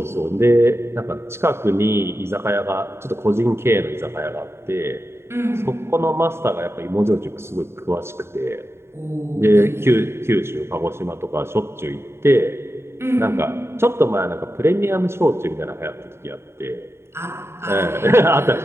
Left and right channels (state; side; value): late; left; 0.12 ms